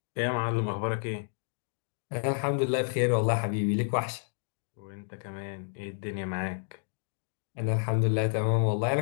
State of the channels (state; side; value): silent; right; digital silence